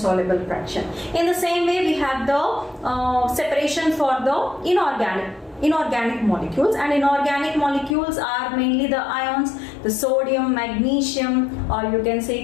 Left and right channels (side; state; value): right; drops out; at 8.0 s